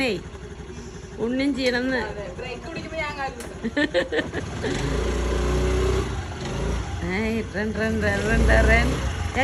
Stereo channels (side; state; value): both; identical; correlation 1.00